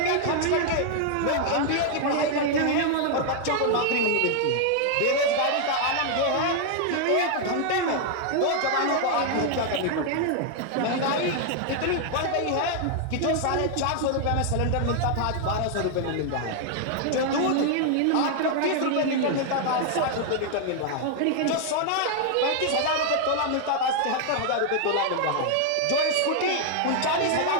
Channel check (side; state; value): both; different; correlation 0.00